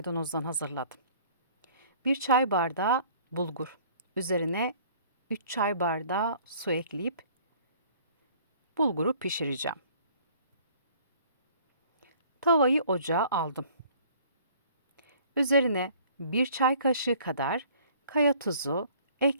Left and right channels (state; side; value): inverted; both; correlation -0.54